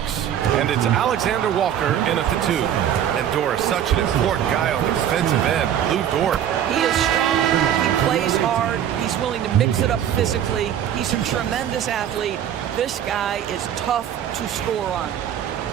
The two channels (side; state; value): left; quieter; 10.1 dB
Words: And it's Alexander Walker in at the 2. And Dort is such an important guy on the defensive end. Lou Dort. He is strong. He plays hard. He's willing to mix it up physically. He's a tremendous athlete. This guy is tough to score on.